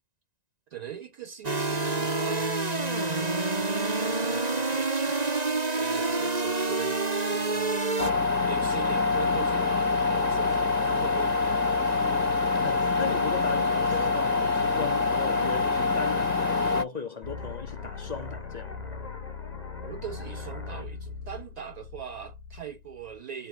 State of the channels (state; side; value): late; left; 1.9 ms